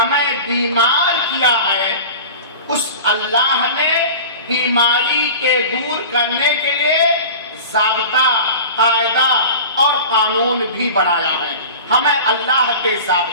بیمار کیا ہے، اس اللہ نے بیماری کے دور کرنے کے لیے ضابطہ، قاعدہ اور قانون بھی بنایا ہے۔ ہمیں اللہ کے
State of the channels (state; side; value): inverted; both; correlation -0.36